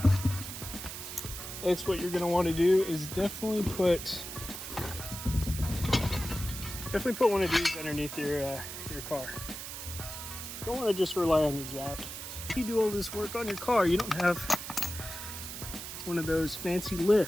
Next, what you're gonna want to do is definitely put one of these underneath your car. You don't want to just rely on your jack. You do all this work on your car, you don't have one of those fancy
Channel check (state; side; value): noise; right; hiss, 8 dB below the sound